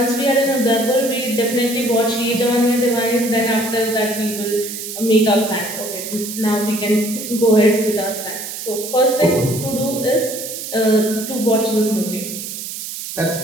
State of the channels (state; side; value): noise; right; hiss, 8 dB below the sound